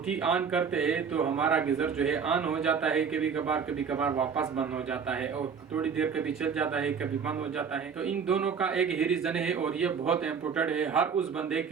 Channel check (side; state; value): left; quieter; 6.4 dB